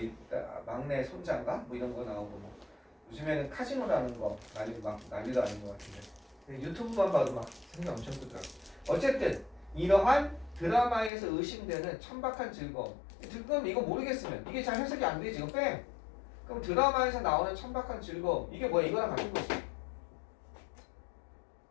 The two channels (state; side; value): drops out; right; at 11.1 s